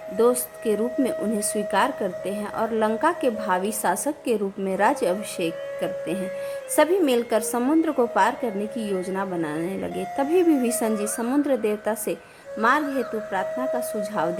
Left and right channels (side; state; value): both; identical; correlation 1.00